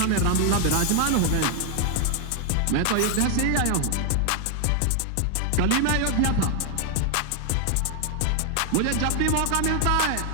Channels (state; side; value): different; both; correlation 0.00